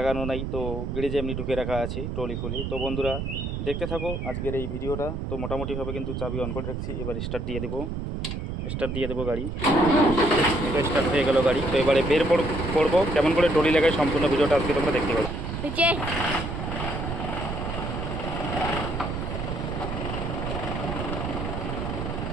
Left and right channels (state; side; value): noise; right; rumble, 4 dB below the sound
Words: নাই, তো গ্যারেজে এমনি ঢুকে রাখা আছে ট্রলি খুলে। তো বন্ধুরা দেখতে থাকো আজকের এই ভিডিওটা। তো মোটামুটিভাবে কিন্তু চাবি অন করে রাখছি, এবার স্টার্ট দিয়ে দেবো গাড়ি। এটা স্টার্ট হয়ে গেল গাড়ি। তো এবারে বের পড়বো কেমন করে ট্রলি লাগায়, সম্পূর্ণ ভিডিওটা আজকে তোমরা দেখতে পাবে।